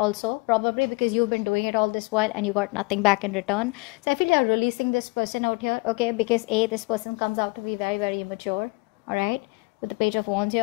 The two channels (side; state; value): right; quieter; 26.8 dB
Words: probably because you've been doing it all this while and you got nothing back in return. So I feel you're releasing this person out here, okay? Because this person comes out to be very, very immature, all right? With the Page of Wands